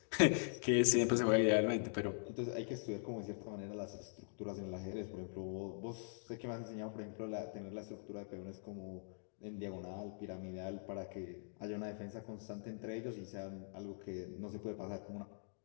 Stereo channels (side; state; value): right; silent; digital silence